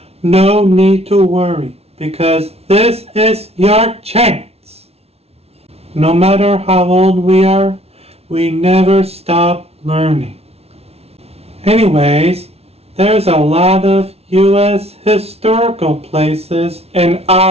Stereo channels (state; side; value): late; left; 0.30 ms